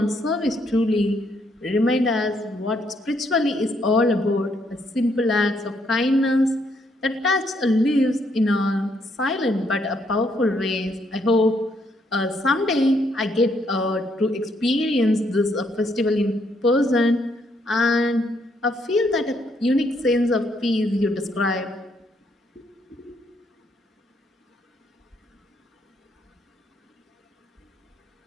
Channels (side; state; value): both; normal; correlation 0.73